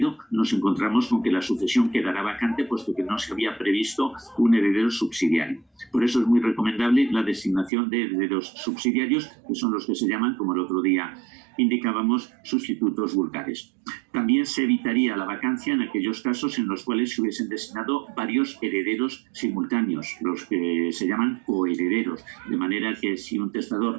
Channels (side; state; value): left; drops out; at 7.7 s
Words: nos encontramos con que la sucesión quedará vacante, puesto que no se había previsto un heredero subsidiario. Por eso es muy recomendable la designación de herederos subsidiarios, que son los que se llaman, como el otro día indicábamos, sustitutos vulgares. También se evitaría la vacancia en aquellos casos en los cuales se hubiesen designado varios herederos simultáneos, los que se llaman coherederos, de manera que si un